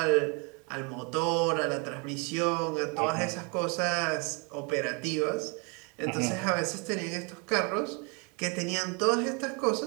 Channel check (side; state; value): left; quieter; 32.7 dB